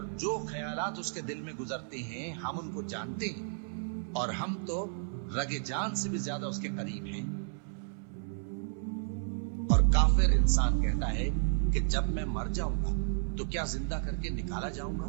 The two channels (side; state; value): left; silent; 56 dB below the other